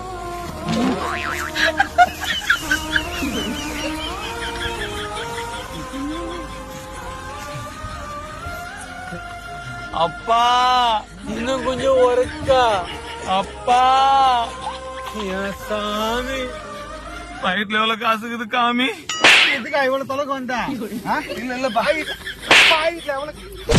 அப்பா இன்னும் கொஞ்சம் ஒருக்கா. அப்பா என் சாமி, வயிற்றுல எவ்வளவு காசுக்குது காமி? எதுக்கா இவ்வளவு தொலைக்கு வந்தா? இல்ல இல்ல பாய் பாயிட்ல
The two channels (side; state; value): both; identical; correlation 1.00